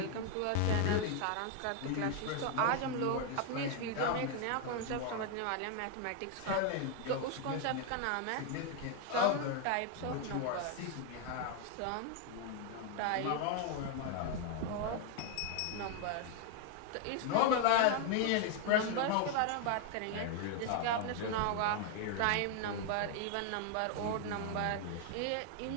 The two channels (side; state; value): both; different; correlation 0.01